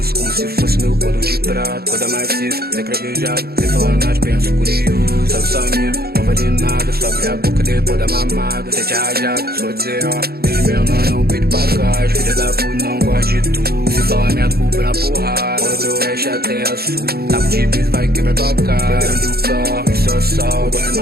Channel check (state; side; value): late; left; 0.45 ms